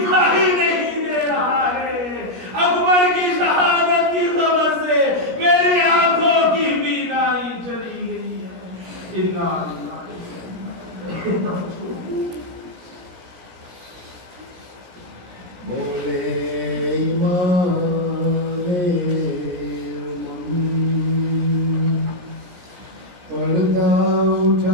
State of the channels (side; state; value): left; late; 17 ms